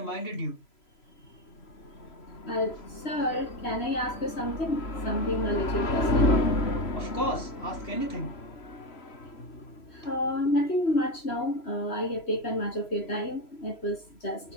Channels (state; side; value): late; right; 3.0 ms